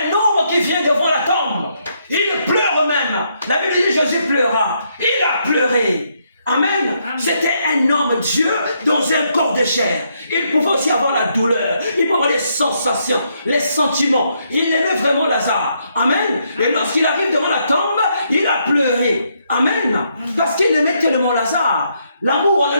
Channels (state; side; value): inverted; both; correlation -0.75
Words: homme qui vient devant la tombe. Il pleure même. La Bible dit Jésus pleura. Il a pleuré. Amen. C'était un homme Dieu dans un corps de chair. Il pouvait aussi avoir la douleur. Il pouvait avoir les sensations, les sentiments. Il aimait vraiment Lazare. Amen. Et lorsqu'il arrive devant la tombe, il a pleuré. Amen. Parce qu'il aimait tellement Lazare. L'amour, on a